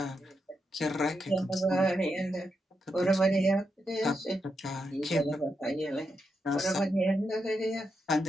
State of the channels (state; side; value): normal; both; correlation 0.84